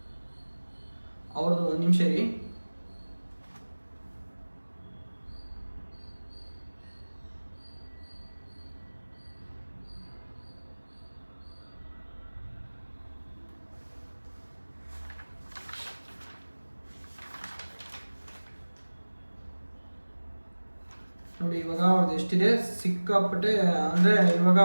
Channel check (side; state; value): both; inverted; correlation -1.00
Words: ಅವ್ರದ್ದು ಒಂದು ನಿಮಿಷ ರೀ. ನೋಡಿ, ಇವಾಗ ಅವ್ರದ್ದು ಎಷ್ಟಿದೆ ಸಿಕ್ಕಾಪಟ್ಟೆ. ಅಂದ್ರೆ ಇವಾಗ